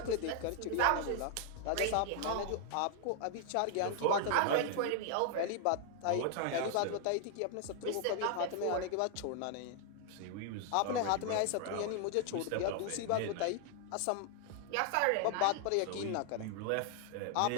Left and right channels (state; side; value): different; both; correlation 0.00